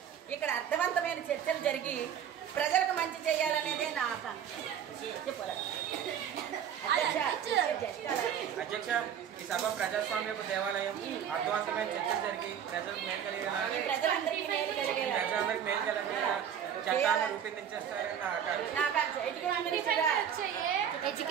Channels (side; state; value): left; quieter; 8.8 dB